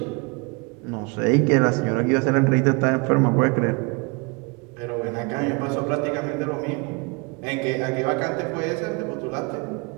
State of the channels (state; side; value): quieter; left; 29.7 dB